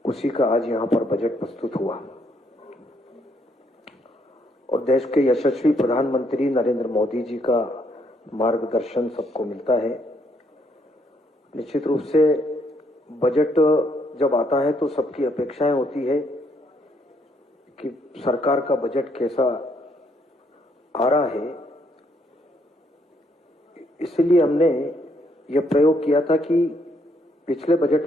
उसी का आज यहां पर बजट प्रस्तुत हुआ और देश के यशस्वी प्रधानमंत्री नरेंद्र मोदी जी का मार्गदर्शन सबको मिलता है। निश्चित रूप से बजट जब आता है तो सबकी अपेक्षाएं होती है कि सरकार का बजट कैसा आ रहा है। इसलिए हमने यह प्रयोग किया था कि पिछले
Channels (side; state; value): both; normal; correlation 0.71